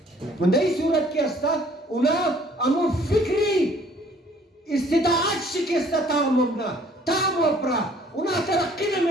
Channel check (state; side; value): normal; both; correlation 0.58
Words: من در این صورت که است اونا امو فکری استطاعت شکسته تا ممنا تا مپرا اونا ترقی